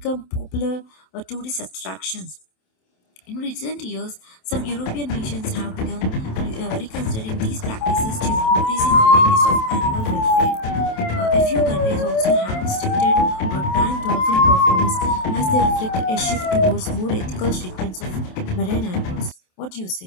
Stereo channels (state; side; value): late; right; 27 ms